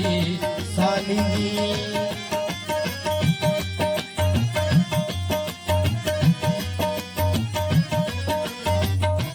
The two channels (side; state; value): both; identical; correlation 1.00